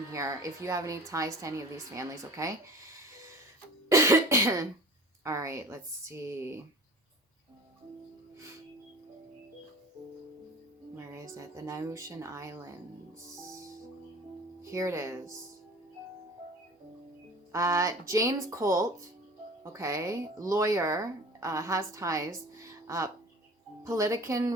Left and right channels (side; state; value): both; normal; correlation 0.42